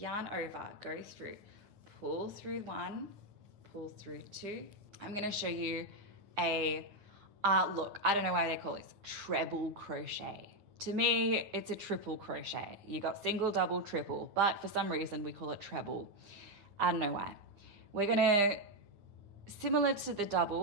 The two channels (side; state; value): left; late; 9.9 ms